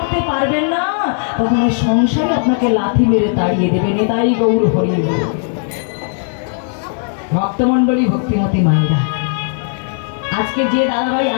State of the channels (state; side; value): silent; right; 66 dB below the other